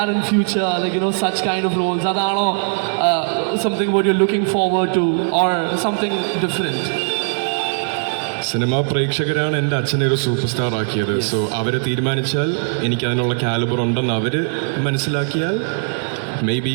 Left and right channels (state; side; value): silent; left; digital silence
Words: in future? Like, you know, such kind of roles? Adano, something what you're looking forward to, or something different? Cinema പ്രേക്ഷകരാണ് എൻ്റെ അച്ഛനെ ഒരു സൂപ്പർ സ്റ്റാർ ആക്കിയത്. സോ അവർ തീരുമാനിച്ചാൽ എനിക്ക് അതിനുള്ള കാലിബർ ഉണ്ടെന്ന് അവർ മനസ്സിലാക്കിയാൽ മേ ബി